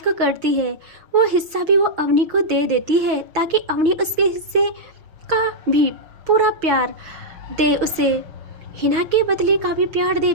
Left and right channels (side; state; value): left; late; 6.2 ms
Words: करती है वो हिस्सा भी वो अवनी को दे देती है, ताकि अवनी उसके हिस्से का भी पूरा प्यार दे उसे। हिना के बदले का भी प्यार दे